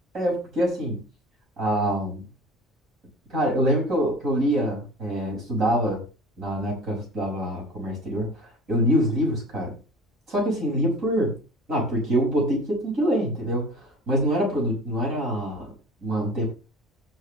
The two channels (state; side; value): normal; both; correlation 0.41